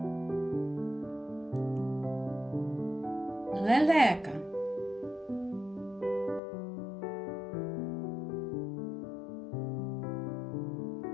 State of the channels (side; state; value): right; drops out; at 6.4 s